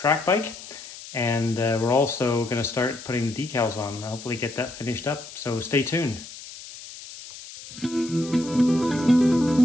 bike. And we're also going to start putting the decals on, hopefully get that finished up. So stay tuned.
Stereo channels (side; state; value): left; noise; hiss, 14 dB below the sound